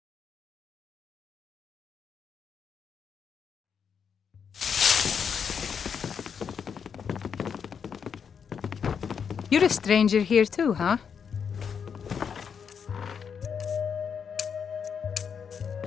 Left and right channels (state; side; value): quieter; right; 6.9 dB